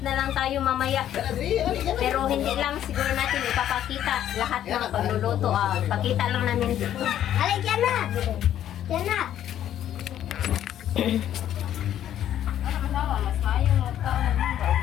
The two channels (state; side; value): quieter; right; 11.2 dB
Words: lang tayo mamaya. Pero hindi lang siguro natin ipapakita lahat ng pagluluto. Pakita lang namin dito. Alay, dyan na! Dyan na!